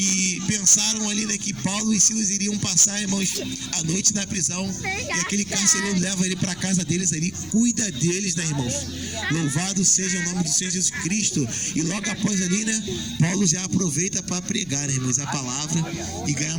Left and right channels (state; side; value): noise; left; rumble, 22 dB below the sound